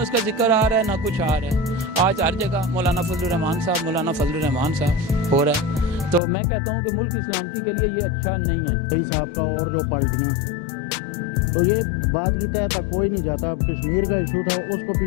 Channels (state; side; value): drops out; right; at 6.2 s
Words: اس کا ذکر آ رہا ہے نہ کچھ آ رہا ہے۔ آج ہر جگہ مولانا فضل الرحمان صاحب، مولانا فضل الرحمان صاحب ہو رہا ہے، تو میں کہتا ہوں کہ ملک کی سلامتی کے لیے یہ اچھا نہیں ہے۔ کئی صاحب کا اور جو پارٹیاں تو یہ بات کی تہ تک کوئی نہیں جاتا۔ اب کشمیر کا ایشو تھا، اس کو